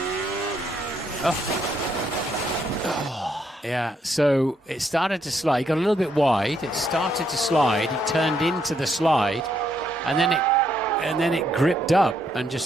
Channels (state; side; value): normal; both; correlation 0.74